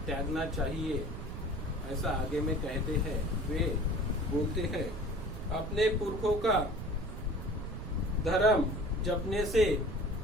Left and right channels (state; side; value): noise; right; rumble, 8 dB below the sound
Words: त्यागना चाहिए, ऐसा आगे में कहते हैं। वे बोलते हैं, अपने पुरखों का धर्म जपने से